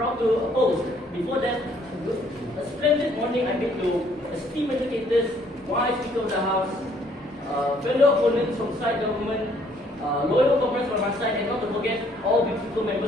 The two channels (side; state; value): both; normal; correlation 0.64